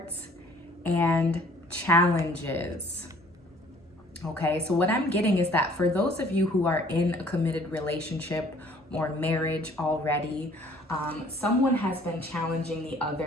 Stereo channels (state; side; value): normal; both; correlation 0.56